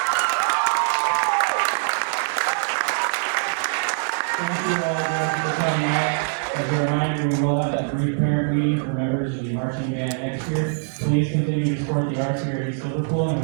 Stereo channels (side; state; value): left; silent; 60 dB below the other